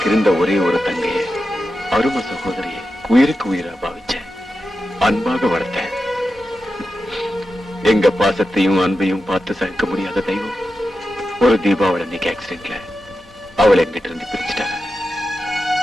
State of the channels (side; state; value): both; normal; correlation 0.90